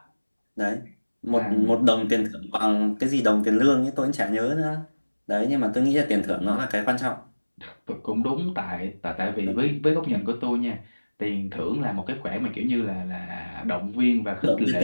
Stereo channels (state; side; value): inverted; both; correlation -1.00